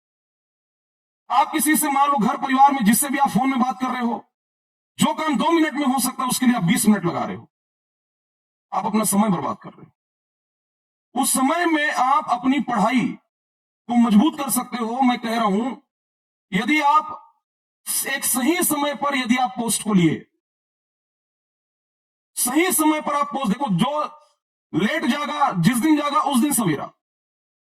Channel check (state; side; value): identical; both; correlation 1.00